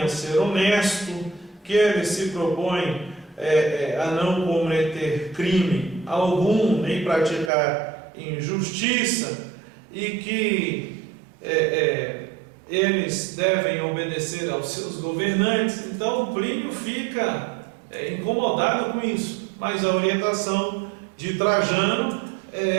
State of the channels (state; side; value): drops out; left; at 7.5 s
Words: a ser honesto, que ele se propõe a não cometer crime algum, nem praticar injustiça, e que eles devem obedecer aos seus governantes. Então Plínio fica incomodado com isso, mas a orientação de Trajano